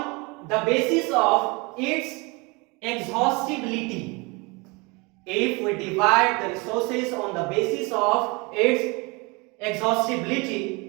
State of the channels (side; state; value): left; quieter; 27.5 dB